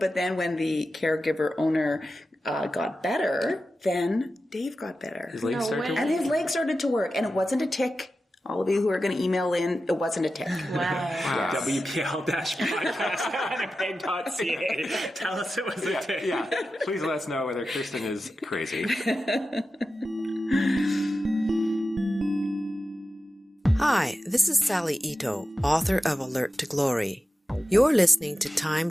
then when the caregiver owner got better, then Dave got better. His legs started to work? And his legs started to work. And it wasn't a tick. All of you who are going to email in, it wasn't a tick. Wow. wpl-podcast.winnipeg.ca. Tell us it was a tick. Yeah. Please let us know whether Kirsten is crazy. Hi, this is Sally Ito, author of Alert to Glory. You're listening to Time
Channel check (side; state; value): both; normal; correlation 0.92